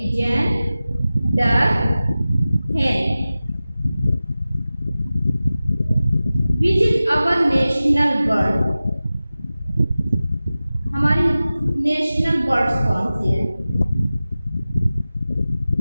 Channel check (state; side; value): inverted; both; correlation -0.96